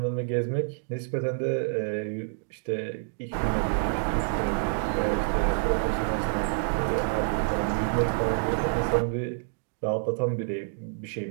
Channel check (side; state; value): left; silent; digital silence